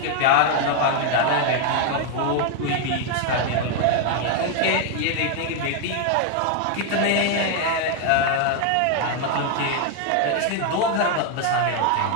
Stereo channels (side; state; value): both; different; correlation 0.00